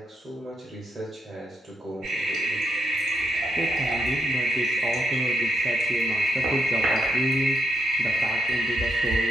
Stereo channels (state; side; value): normal; both; correlation 0.78